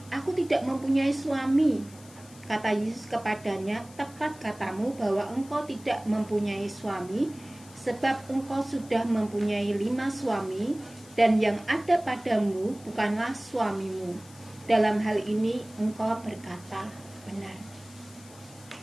aku tidak mempunyai suami. Kata Yesus kepadanya, tepat katamu bahwa engkau tidak mempunyai suami, sebab engkau sudah mempunyai 5 suami, dan yang ada padamu bukanlah suamimu. Dalam hal ini engkau berkata benar.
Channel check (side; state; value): left; noise; hiss, 22 dB below the sound